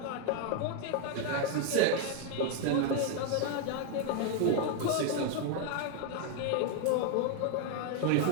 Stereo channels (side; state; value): both; different; correlation 0.00